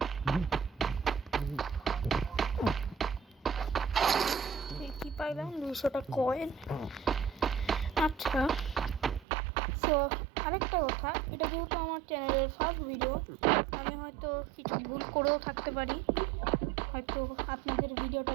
কি পাইলাম? 200টা কয়েন। আচ্ছা, সো আরেকটা কথা, এটা যেহেতু আমার চ্যানেলের ফার্স্ট ভিডিও, আমি হয়তো কিছু ভুল করেও থাকতে পারি, হয়তো আপনাদের ভিডিওটা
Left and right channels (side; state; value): left; drops out; at 9.2 s